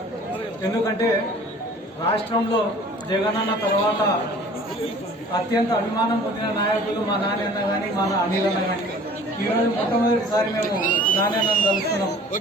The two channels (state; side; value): normal; both; correlation 0.48